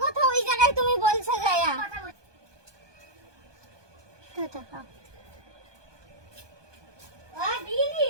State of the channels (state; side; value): late; left; 1.2 ms